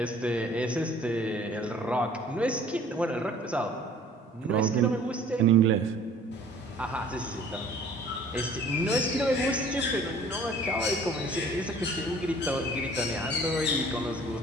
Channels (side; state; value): both; normal; correlation 0.52